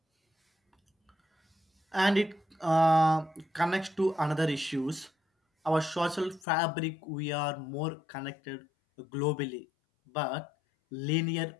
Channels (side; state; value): right; drops out; at 6.4 s